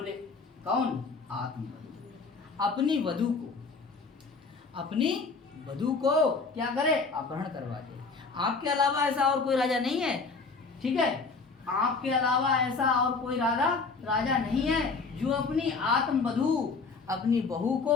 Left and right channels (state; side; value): quieter; right; 4.4 dB